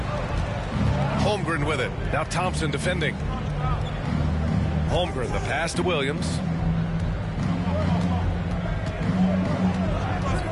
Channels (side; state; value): both; identical; correlation 1.00